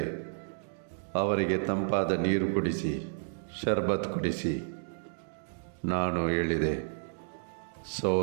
ಅವರಿಗೆ ತಂಪಾದ ನೀರು ಕುಡಿಸಿ, ಶರ್ಬತ್ ಕುಡಿಸಿ. ನಾನು ಹೇಳಿದೆ,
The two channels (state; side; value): silent; left; digital silence